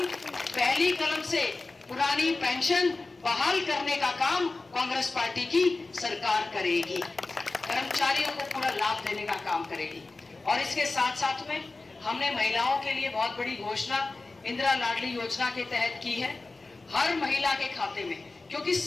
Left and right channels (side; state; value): right; quieter; 3.4 dB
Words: कलम से पुरानी पेंशन बहाल करने का काम कांग्रेस पार्टी की सरकार करेगी, कर्मचारियों को पूरा लाभ देने का काम करेगी। और इसके साथ साथ में हमने महिलाओं के लिए बहुत बड़ी घोषणा इंदिरा लाडली योजना के तहत की है। हर महिला के खाते में, क्योंकि